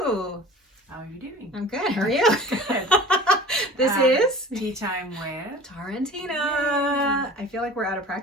How are you doing? I'm good. How are you? Good. This is Tea Time with Tara and Tina. Yay. I feel like we're out of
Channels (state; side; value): normal; both; correlation 0.40